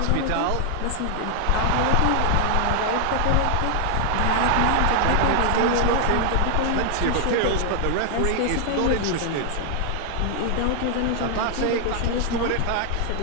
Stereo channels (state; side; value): different; both; correlation 0.00